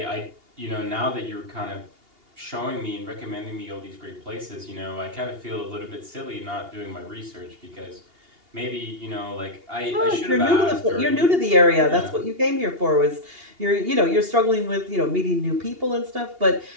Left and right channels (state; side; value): late; left; 2.8 ms